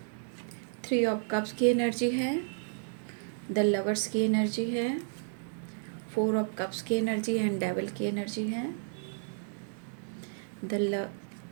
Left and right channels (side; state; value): left; silent; digital silence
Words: 3 ऑफ कप्स की एनर्जी है, द लवर्स की एनर्जी है, 4 ऑफ कप्स की एनर्जी एंड डेविल की एनर्जी है।